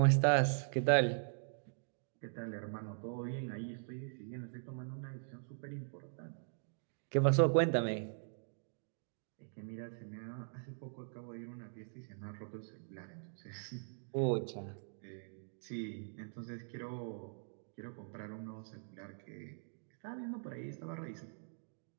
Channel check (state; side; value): silent; left; digital silence